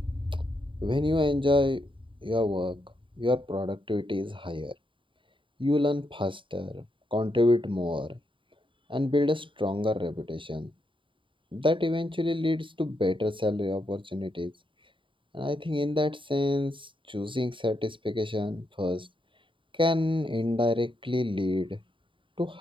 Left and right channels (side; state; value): left; late; 0.25 ms